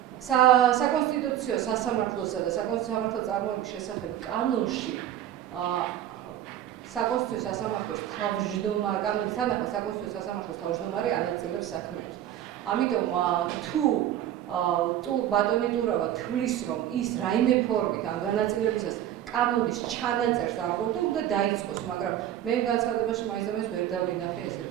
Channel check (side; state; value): left; quieter; 11.6 dB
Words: საკონსტიტუციო სასამართლოსა და საკონსტიტუციო სამართალწარმოების შესახებ კანონში საკონსტიტუციო სასამართლოს თავმჯდომარე კანონის თანახმად საკონსტიტუციო სასამართლოს თავმჯდომარე ანაწილებს საქმეებს. ამიტომ თუ ბატონი ტურავა თვლის, რომ ის რაიმე ფორმით ამ განაწილებისას კანონის ჩანაწერს არ ყოფდა, უნდა დაიწყოს, მაგრამ მე განცხადებაში მაინც და მაინც ვერ დავინახე ესეთ.